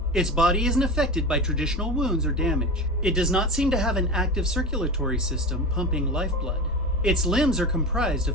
Its body isn't affected by traditional wounds or damage. It does not seem to have an active circulatory system pumping lifeblood. Its limbs are comprised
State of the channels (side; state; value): both; normal; correlation 0.26